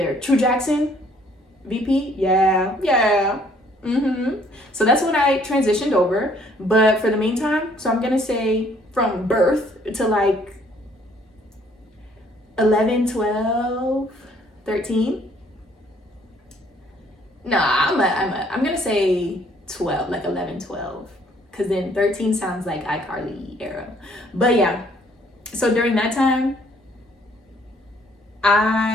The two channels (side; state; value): both; normal; correlation 0.62